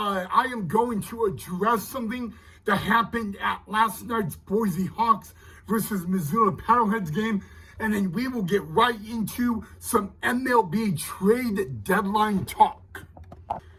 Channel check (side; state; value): both; identical; correlation 1.00